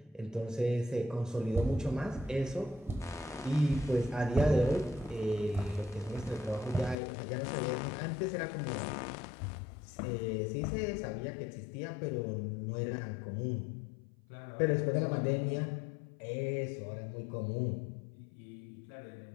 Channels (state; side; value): drops out; right; at 7.0 s